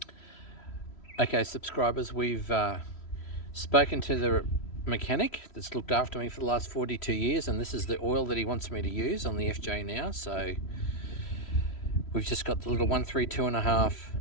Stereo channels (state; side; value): late; right; 3.1 ms